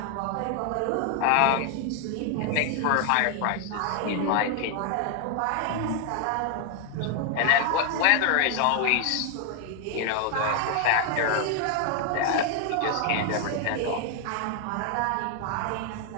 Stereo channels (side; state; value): both; different; correlation 0.00